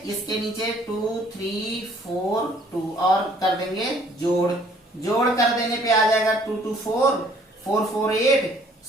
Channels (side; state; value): both; normal; correlation 0.59